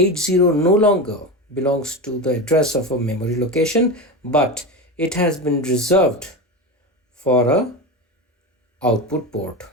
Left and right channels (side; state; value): both; normal; correlation 0.21